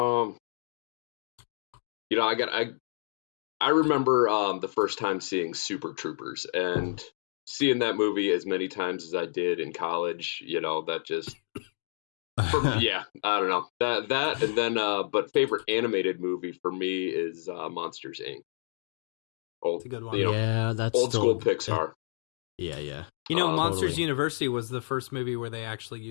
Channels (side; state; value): right; silent; digital silence